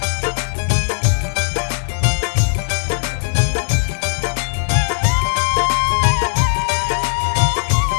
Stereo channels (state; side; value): silent; right; 67 dB below the other